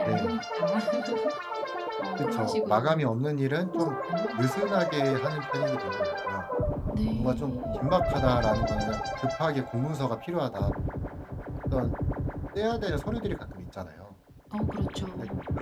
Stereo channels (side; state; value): both; identical; correlation 1.00